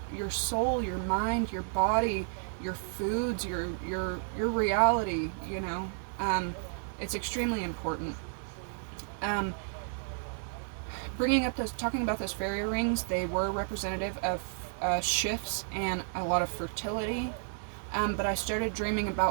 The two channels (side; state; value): left; silent; digital silence